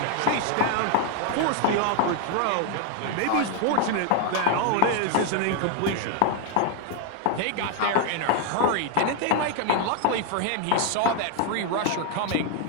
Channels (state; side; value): different; both; correlation 0.01